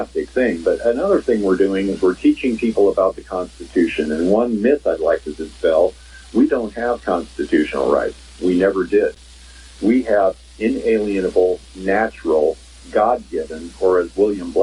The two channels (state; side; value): identical; both; correlation 1.00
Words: thing. But another thing we're doing is we're teaching people about the Constitution. And one myth I'd like to dispel: we don't have constitutional rights. We never did. We have inalienable, natural, God-given, or as William